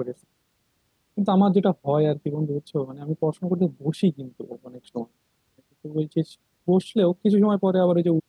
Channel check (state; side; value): identical; both; correlation 1.00